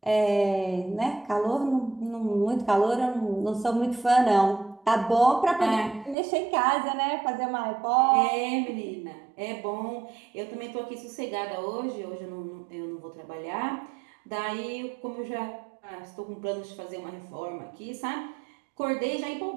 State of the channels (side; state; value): left; drops out; at 6.2 s